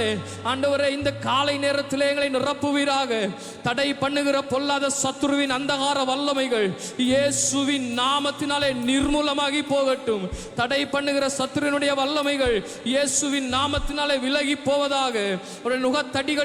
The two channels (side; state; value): both; identical; correlation 1.00